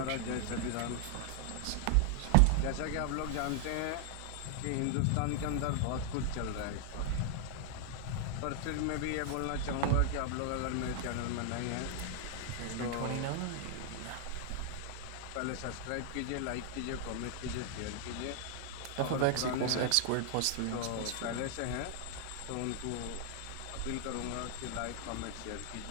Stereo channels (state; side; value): different; both; correlation 0.00